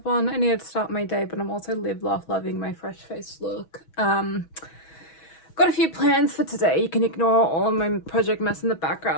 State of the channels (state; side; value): late; right; 6.2 ms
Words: on. I need to start my day, but I'm also live, laugh, loving my fresh face look. Got a few plans for today. You can ignore all of my project mess in the